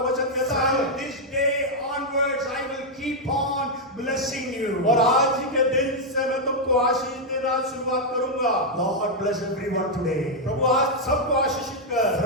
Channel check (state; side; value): normal; both; correlation -0.02